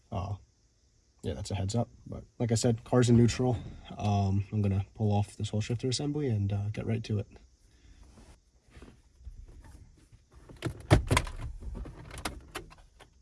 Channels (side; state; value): both; identical; correlation 1.00